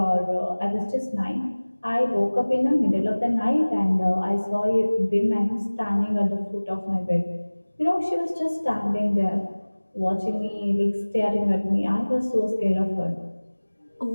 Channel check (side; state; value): both; inverted; correlation -1.00